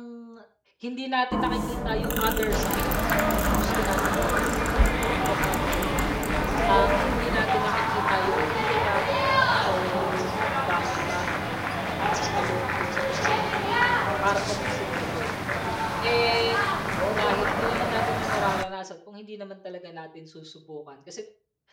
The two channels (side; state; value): both; identical; correlation 1.00